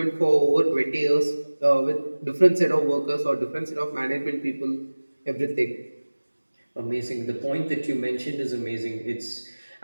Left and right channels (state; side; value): inverted; both; correlation -1.00